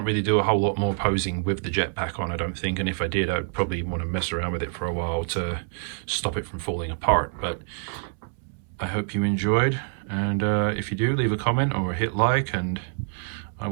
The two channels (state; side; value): silent; left; 61 dB below the other